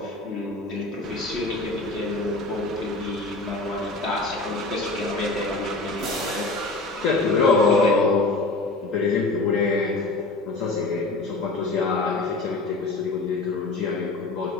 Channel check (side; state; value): right; quieter; 3.1 dB